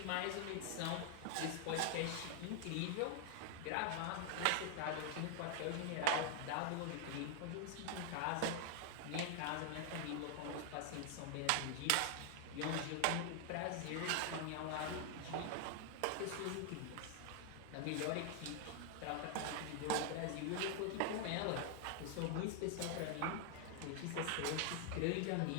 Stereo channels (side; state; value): both; different; correlation 0.00